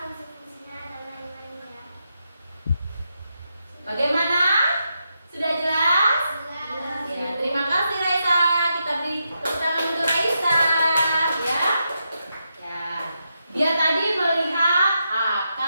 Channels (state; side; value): inverted; both; correlation -0.84